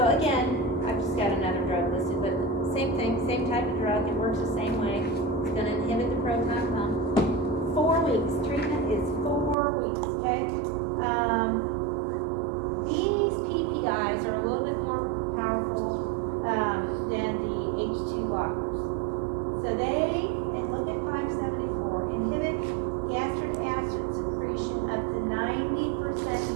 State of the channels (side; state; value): left; drops out; at 9.6 s